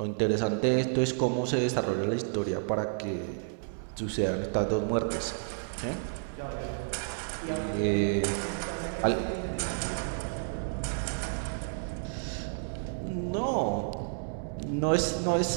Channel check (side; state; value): left; silent; digital silence